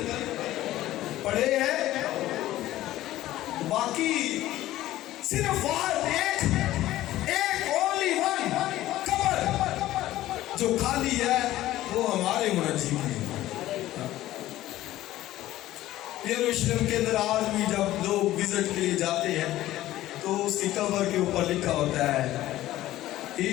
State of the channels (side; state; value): right; quieter; 15.0 dB